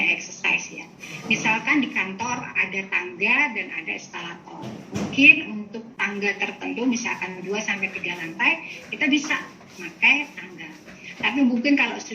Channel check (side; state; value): both; identical; correlation 1.00